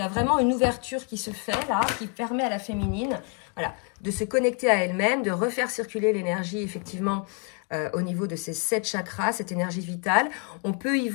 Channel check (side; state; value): right; quieter; 36.9 dB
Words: a vraiment une ouverture qui se fait là, qui permet à la féminine voilà, de se connecter à elle-même, de refaire circuler l'énergie, effectivement, au niveau de ces 7 chakras, cette énergie vitale. On peut y